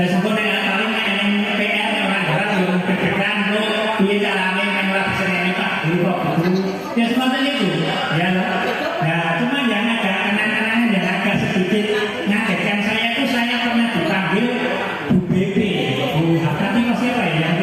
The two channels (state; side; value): identical; both; correlation 1.00